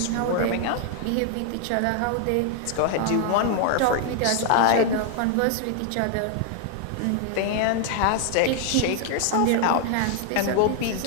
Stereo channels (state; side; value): different; both; correlation 0.00